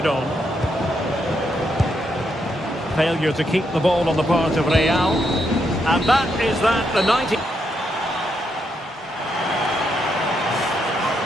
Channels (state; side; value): normal; both; correlation 0.79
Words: on. Failure to keep the ball on the part of Real. And that is that, the 90...